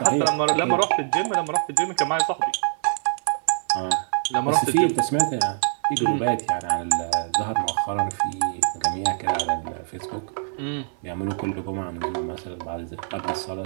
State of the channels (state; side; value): silent; left; 58 dB below the other